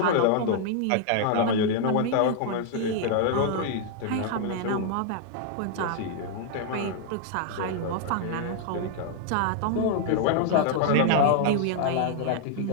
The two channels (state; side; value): different; both; correlation 0.00